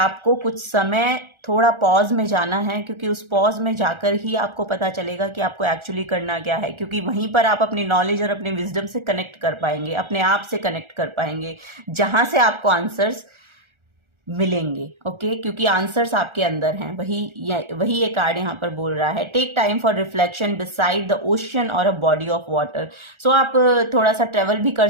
कुछ समय थोड़ा पॉज में जाना है, क्योंकि उस पॉज में जाकर ही आपको पता चलेगा कि आपको एक्चुअली करना क्या है, क्योंकि वहीं पर आप अपनी नॉलेज और अपने विजडम से कनेक्ट कर पाएंगे, अपने आप से कनेक्ट कर पाएंगे, जहां से आपको आंसर्स मिलेंगे। ओके, क्योंकि आंसर्स आपके अंदर हैं। वही ये कार्ड यहाँ पर बोल रहा है, take time for reflection beside the ocean or a body of water. So आप थोड़ा सा ट्रेवल भी कर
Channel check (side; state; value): left; late; 1.4 ms